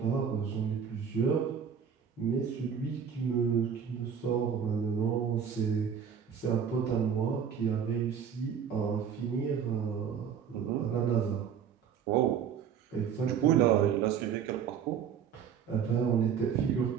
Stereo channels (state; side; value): quieter; left; 7.7 dB